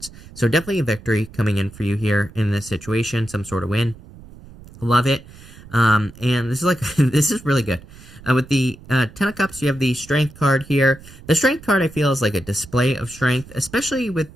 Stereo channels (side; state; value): right; noise; rumble, 19 dB below the sound